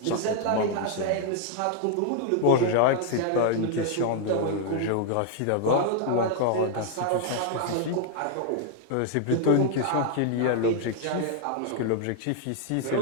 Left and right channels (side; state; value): both; different; correlation 0.00